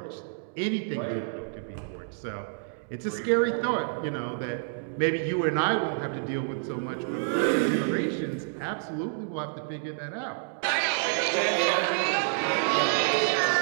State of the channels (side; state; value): left; silent; digital silence